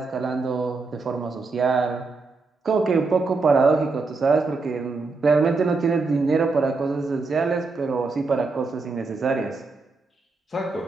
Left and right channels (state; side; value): quieter; left; 4.0 dB